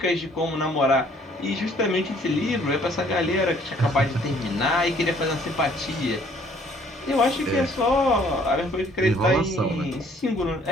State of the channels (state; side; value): normal; both; correlation 0.60